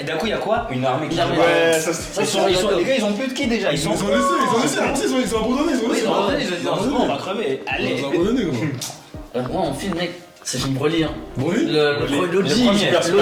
d'un coup, il y a quoi? Une armée qui Une armée. joue. Ouais, ça Les gars, ils ont plus de qui déjà? Ils sont. Ils ont laissé, après ils ont abandonné, ils ont Oui, laissé. ils ont abandonné, ils ont dit non, c'est bon, on va crever. Allez. Ils ont abandonné, gros. Moi, mon film, mec, c'est film Broly, hein. Broly? Le premier, L'OG,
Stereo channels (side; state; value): both; identical; correlation 1.00